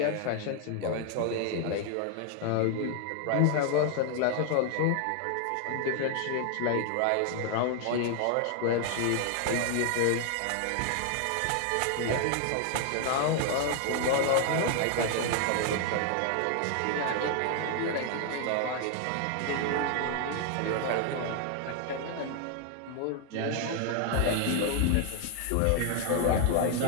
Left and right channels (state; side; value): different; both; correlation 0.00